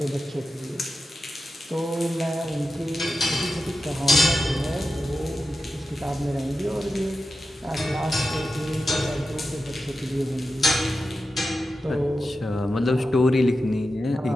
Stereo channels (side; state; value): both; normal; correlation 0.92